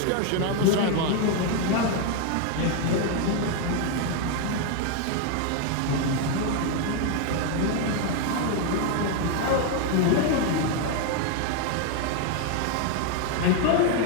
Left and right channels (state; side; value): different; both; correlation 0.01